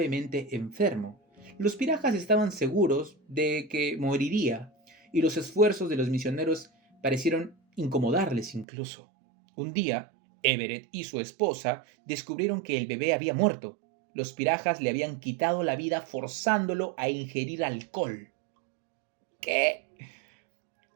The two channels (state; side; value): drops out; left; at 8.7 s